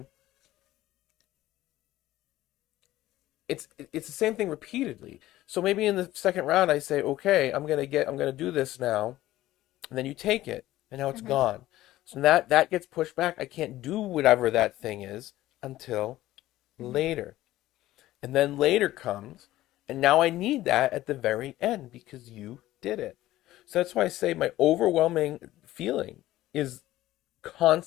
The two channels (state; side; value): quieter; right; 15.5 dB